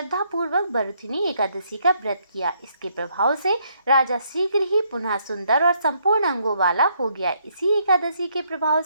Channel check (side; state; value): both; inverted; correlation -0.72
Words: पूर्वक बरथुनी एकादशी का व्रत किया। इसके प्रभाव से राजा शीघ्र ही पुनः सुंदर और संपूर्ण अंगों वाला हो गया। इसी एकादशी के प्रभाव